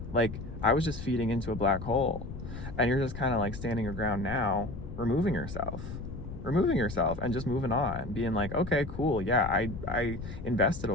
Like, I was just feeding into a black hole. And you're just kind of like standing your ground now, removing yourself and just moving on, being like, okay, cool. Yeah, I invested a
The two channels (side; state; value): left; noise; rumble, 9 dB below the sound